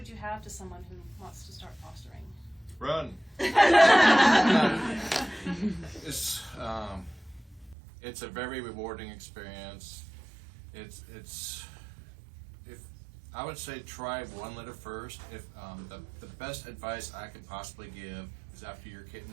you have to someone who wants to start fostering? Run. It's a very rewarding experience. I would say try one litter first. If the best advice I could possibly give is after your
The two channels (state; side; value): drops out; left; at 7.8 s